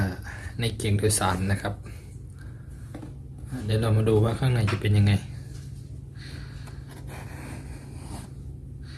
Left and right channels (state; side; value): identical; both; correlation 1.00